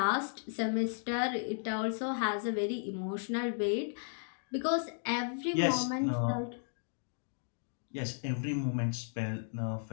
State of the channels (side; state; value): right; silent; digital silence